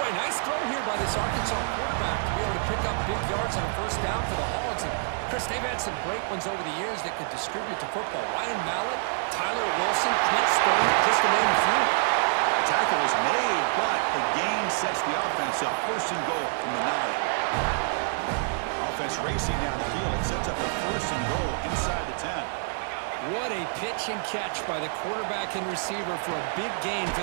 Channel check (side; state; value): left; silent; digital silence